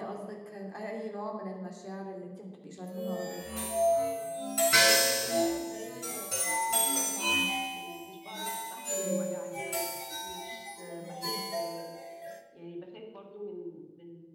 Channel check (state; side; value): identical; both; correlation 1.00